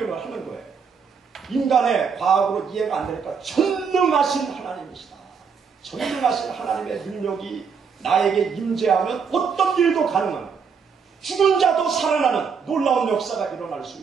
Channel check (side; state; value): left; quieter; 6.1 dB